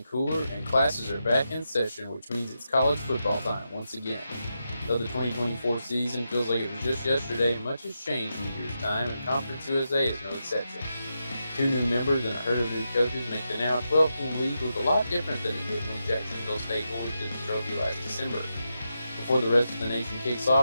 cooler, and classes are back in session, which means it's college football time once again. Though the 2024 season feels like it was just yesterday, much has changed in a year's time, and Conference USA is no exception. 2 new members and a herd of new coaches make the now 12-team league look a lot different than it did when Jacksonville State won the trophy last December. Before the rest of the nation kicks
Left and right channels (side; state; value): both; inverted; correlation -0.86